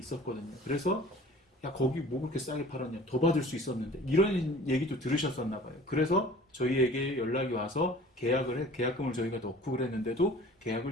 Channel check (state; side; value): normal; both; correlation 0.46